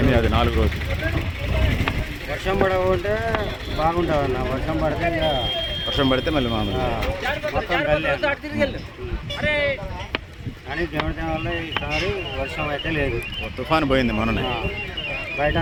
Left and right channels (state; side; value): identical; both; correlation 1.00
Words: అది 4 రోజులు. వర్షం పడకుంటే బాగుంటుంది అన్న. వర్షం పడితే ఇక వర్షం పడితే మళ్ళీ మామూలు. మొత్తం గల్లే. కానీ దేవుడి వల్ల ఈసారి వర్షం అయితే లేదు. తుఫాను పోయింది మొన్ననే. బయట